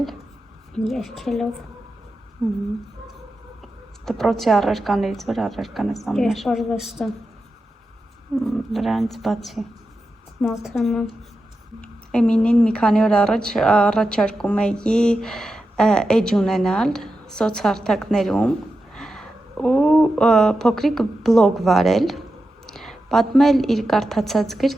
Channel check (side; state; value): both; normal; correlation 0.90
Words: երգելով, դպրոցի առարկաներից որ առարկան ես ամենաշ Երկարվեստը դրանից բացի Մաթեմը Էմինին մի քանի օր առաջ առաջարկում էի էջ ունենալ սոցհարթակներում ու փոքրիկ բլոգ վարել պատմել իր կարդացած